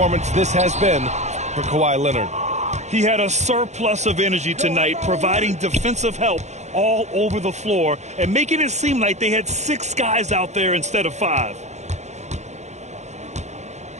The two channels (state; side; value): late; left; 0.33 ms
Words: this has been for Kawhi Leonard. He had a surplus of energy tonight, providing defensive help all over the floor and making it seem like they had 6 guys out there instead of 5.